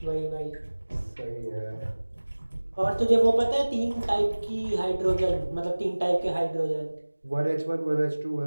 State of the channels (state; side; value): inverted; both; correlation -1.00